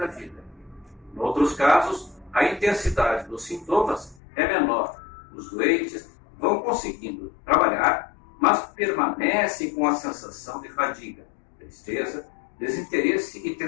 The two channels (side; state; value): right; drops out; at 4.2 s